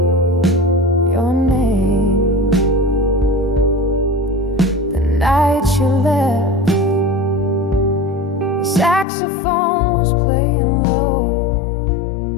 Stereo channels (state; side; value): drops out; right; at 9.1 s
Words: your name. The night you left, the saxophone was playing low,